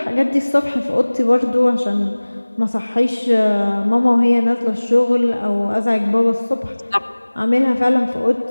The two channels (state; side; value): inverted; both; correlation -1.00